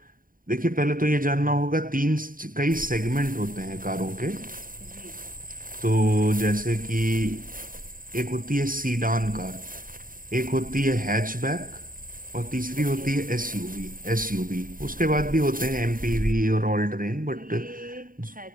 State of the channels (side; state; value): left; late; 0.41 ms